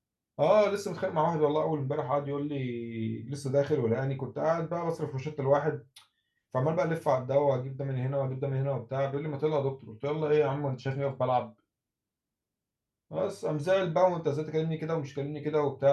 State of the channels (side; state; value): both; identical; correlation 1.00